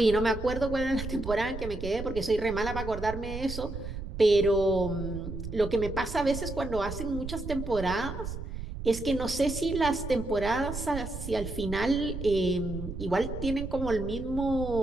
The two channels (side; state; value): right; noise; rumble, 8 dB below the sound